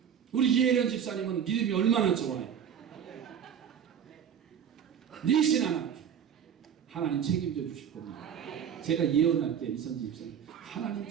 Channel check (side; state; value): left; quieter; 8.3 dB